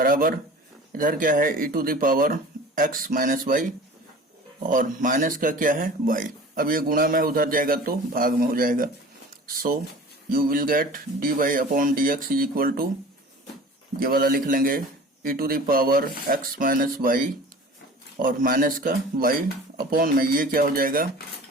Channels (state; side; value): normal; both; correlation 0.41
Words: इधर क्या है e to the power x minus y और माइनस का क्या है y। अब ये गुणा में उधर जाएगा तो भाग में हो जाएगा, so you will get dy upon dx is equal to, ये वाला लिख लेंगे e to the power x minus y और माइनस का y अपॉन में ये क्या हो जाएगा